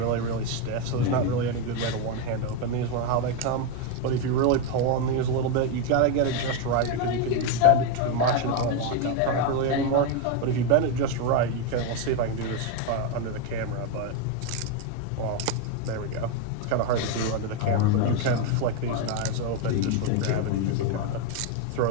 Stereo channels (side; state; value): both; different; correlation 0.02